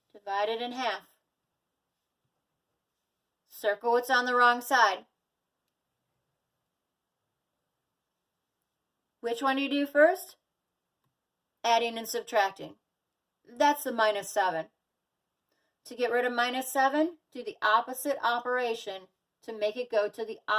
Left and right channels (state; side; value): identical; both; correlation 1.00